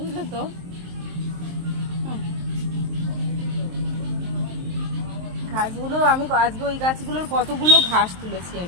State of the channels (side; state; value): left; late; 23 ms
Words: তো। ঘাসগুলো আমি আজকে ওই গাছগুলোর কতগুলো ঘাস তুলেছি